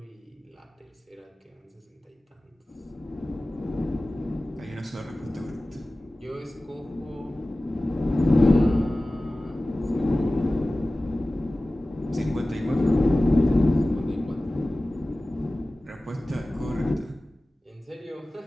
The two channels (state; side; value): normal; both; correlation 0.97